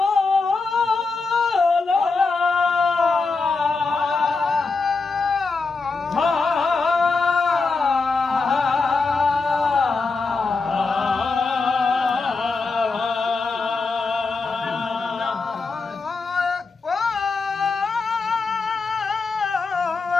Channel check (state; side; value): quieter; right; 4.2 dB